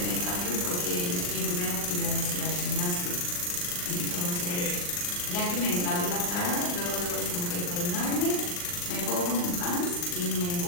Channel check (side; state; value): right; late; 40 ms